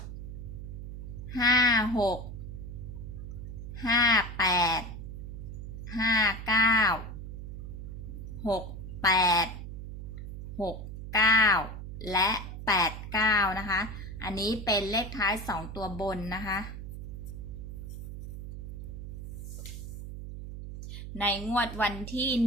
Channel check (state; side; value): noise; right; hum, 8 dB below the sound